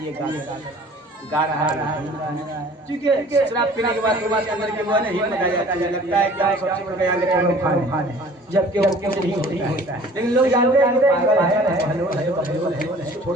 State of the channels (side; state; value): both; normal; correlation 0.49